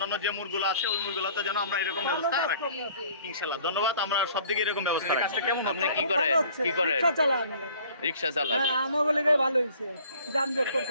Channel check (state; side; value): inverted; both; correlation -0.53